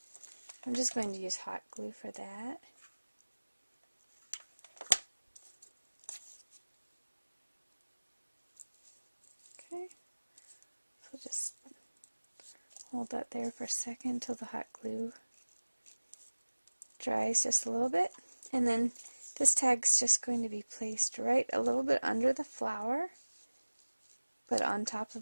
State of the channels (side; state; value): both; inverted; correlation -1.00